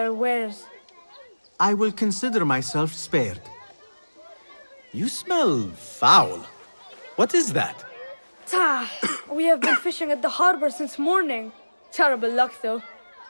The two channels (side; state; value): both; inverted; correlation -1.00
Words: wares. I will consider myself spared. You smell foul. What is that? We have been fishing at the harbor since morning. Terrible luck, though.